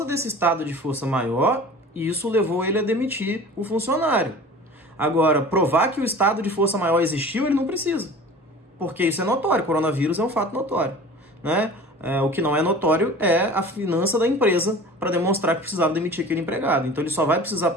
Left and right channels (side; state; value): both; normal; correlation 0.40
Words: desse estado de força maior, isso levou ele a demitir o funcionário. Agora, provar que o estado de força maior existiu, ele não precisa, porque isso é notório, o coronavírus é um fato notório, né? O que não é notório é a finança da empresa para demonstrar que precisava demitir aquele empregado. Então ele só vai precisar